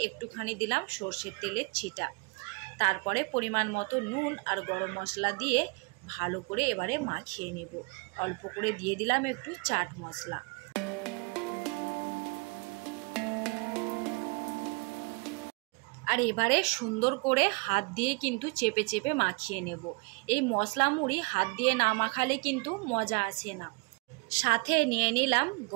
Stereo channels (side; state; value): left; quieter; 30.9 dB